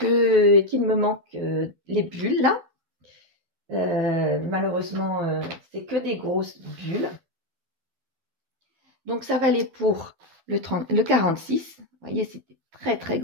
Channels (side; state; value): left; late; 12 ms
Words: me manque les bulles là. Malheureusement, c'est que des grosses bulles. Donc, ça va aller pour le 46. Vous voyez, c'est des très, très